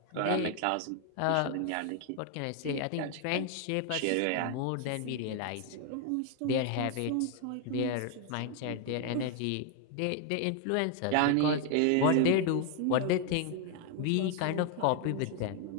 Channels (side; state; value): both; different; correlation 0.00